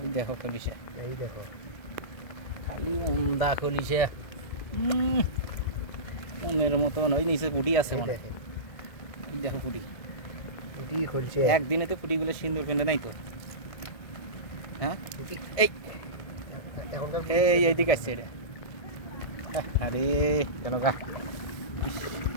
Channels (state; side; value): late; right; 1.7 ms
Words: দেখো খলিসা এই দেখো খালি উমদা খলিসা মনের মতন ওই নিচে পুটি আছে মনে এই দেখো পুটি খুলছে একদিনে তো পুটিগুলো সিন্দুর ফেলে নাই তো হ্যাঁ এইদিকে আসছে এটা আরে কেন গা